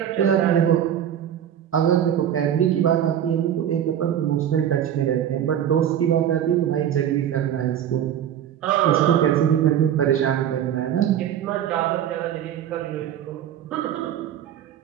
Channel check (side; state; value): left; quieter; 10.1 dB